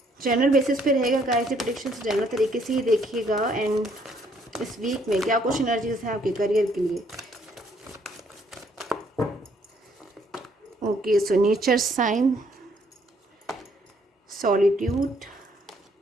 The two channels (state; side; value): normal; both; correlation 0.67